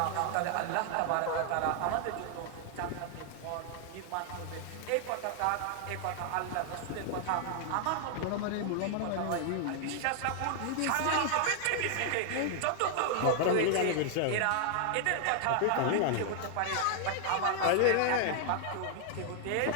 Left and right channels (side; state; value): both; different; correlation 0.00